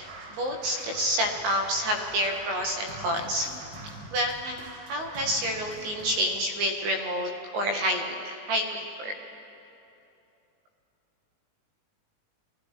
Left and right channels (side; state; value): left; late; 19 ms